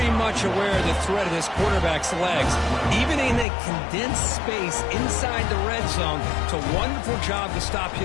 much aware of the threat of this quarterback's legs. Even in a condensed space inside the red zone, it's a wonderful job to stop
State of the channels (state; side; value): drops out; right; at 3.5 s